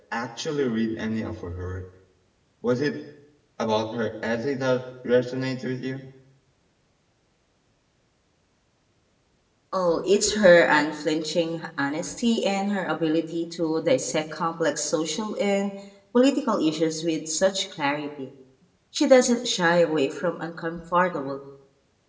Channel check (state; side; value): identical; both; correlation 1.00